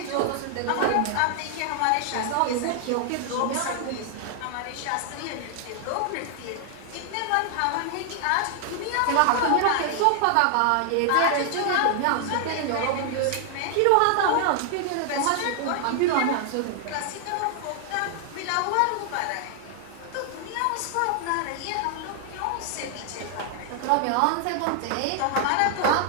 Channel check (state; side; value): different; both; correlation 0.00